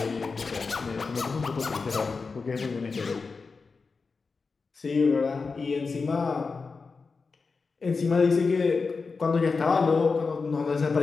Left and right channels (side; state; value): right; quieter; 4.5 dB